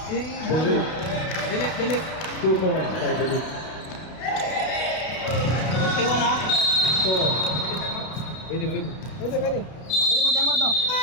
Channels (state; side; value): late; right; 32 ms